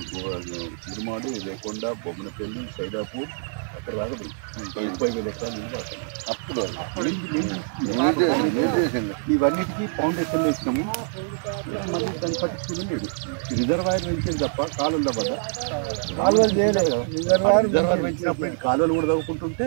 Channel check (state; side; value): silent; left; digital silence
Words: తిరుమాడి లేకొండ బొమ్మనపల్లి సైదాపూర్ అక్కడ దాకా పోయి 30,000 ఎకరాలు నీళ్ళు పడుతుంది. అప్పుడు ఇవన్నిటికీ ఫౌండేషన్లు వేసినాము. మళ్ళీ దాన్ని పట్టించుకుని లేదు. రిజర్వాయర్ పెంచింది తప్ప కాలువల వద్ద కాలువలు చేయలేదు కదా. రిజర్వాయర్ పెంచినప్పుడు కాలువలు కూడా తవ్వుకుంటుంటే